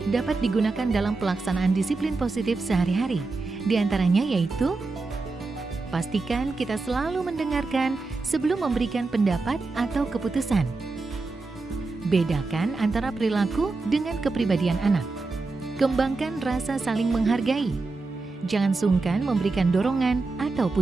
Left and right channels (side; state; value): left; quieter; 3.7 dB